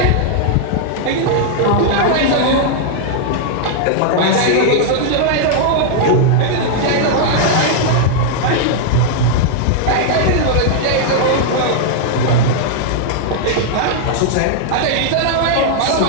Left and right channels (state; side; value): different; both; correlation -0.01